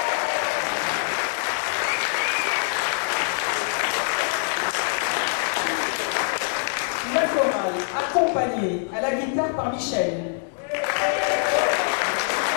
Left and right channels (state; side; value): silent; right; 62 dB below the other